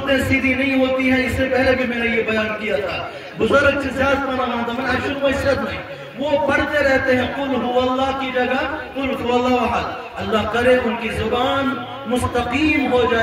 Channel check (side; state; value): both; identical; correlation 1.00